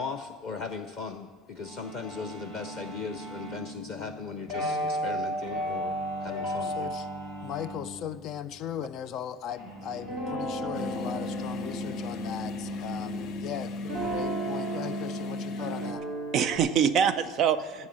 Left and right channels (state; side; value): normal; both; correlation 0.41